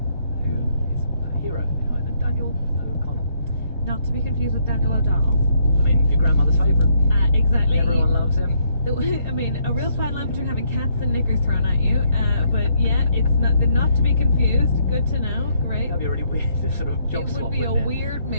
who is a hero in Ireland, Daniel O'Connell. Not to be confused with Daniel O'Donnell. I mean, your grandmother's favourite. Exactly. Everyone loves him. I mean, a real fine line between having cats and knickers thrown at you. But yeah, it's not to be confused. Good to know. Great. That'd be a really weird sort of job It swap. would be a wouldn't it? weird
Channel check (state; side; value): inverted; both; correlation -0.71